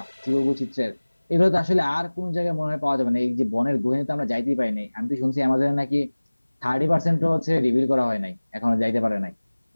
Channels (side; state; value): both; inverted; correlation -1.00